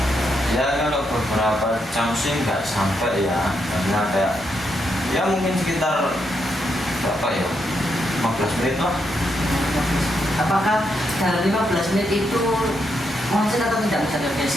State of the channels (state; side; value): normal; both; correlation 0.80